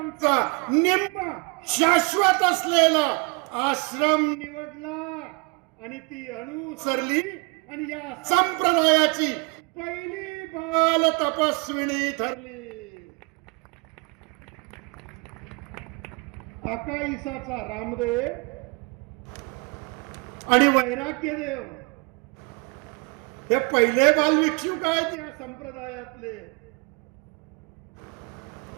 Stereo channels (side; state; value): left; quieter; 32.4 dB